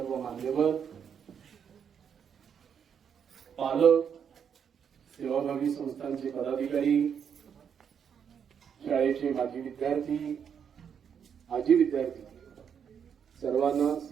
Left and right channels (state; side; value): quieter; left; 7.6 dB